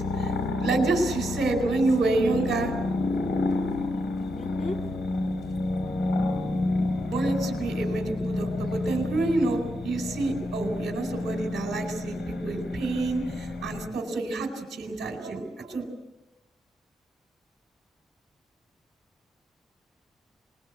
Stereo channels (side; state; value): both; normal; correlation 0.82